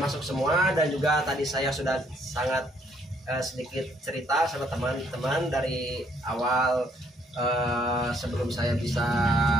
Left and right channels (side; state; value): both; normal; correlation 0.67